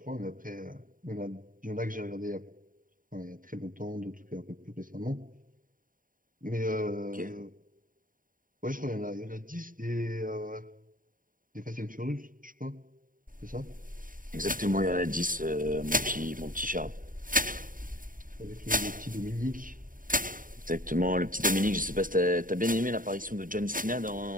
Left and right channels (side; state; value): left; late; 0.40 ms